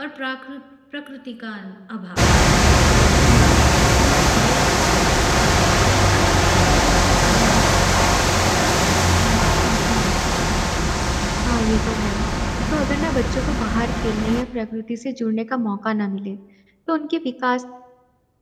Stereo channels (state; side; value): identical; both; correlation 1.00